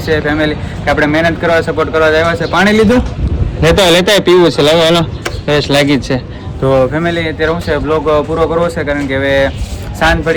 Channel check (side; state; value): both; identical; correlation 1.00